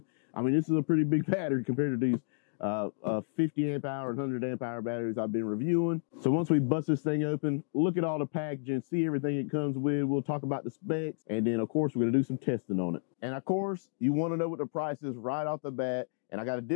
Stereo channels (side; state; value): right; silent; digital silence